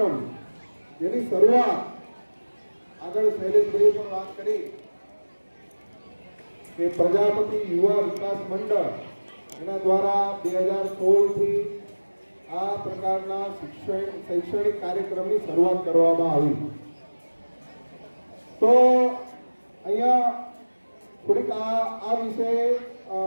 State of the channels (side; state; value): both; inverted; correlation -1.00